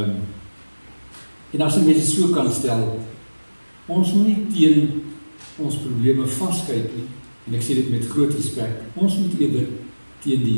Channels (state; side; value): inverted; both; correlation -1.00